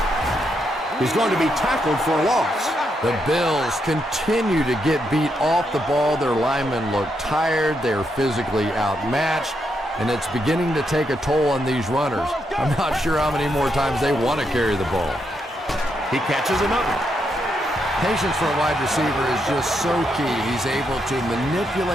He's going to be tackled for a loss. The Bills continue to get beat off the ball. Their linemen look tired. They're physically outmatched, and it's beginning to take a toll on these runners. I'm not sure how many more times they want to carry the ball. He catches another. Patience for a wide receiver is just so key. He's able to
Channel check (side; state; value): both; normal; correlation 0.80